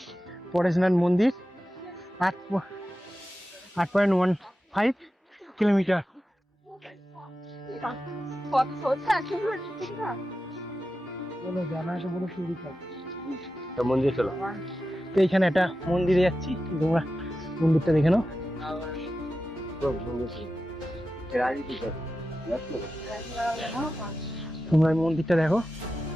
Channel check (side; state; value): both; normal; correlation 0.92